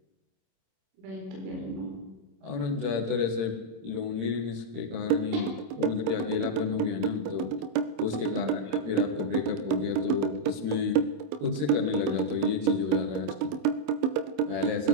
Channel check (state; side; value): late; left; 26 ms